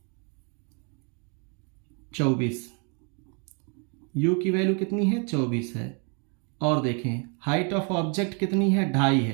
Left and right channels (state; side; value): quieter; left; 36.7 dB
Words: 24। u की वैल्यू कितनी है? 24 है। और देखें हाइट ऑफ ऑब्जेक्ट कितनी है? 2.5